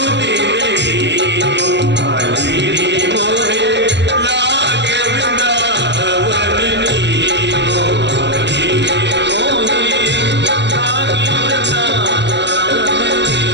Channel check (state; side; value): late; left; 0.51 ms